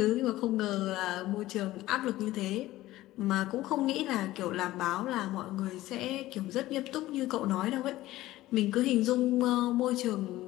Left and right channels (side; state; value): right; quieter; 16.3 dB